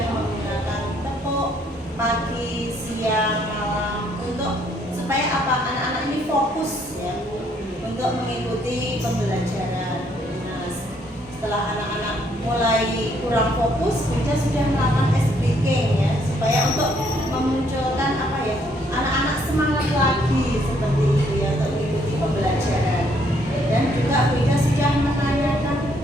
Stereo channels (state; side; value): normal; both; correlation 0.68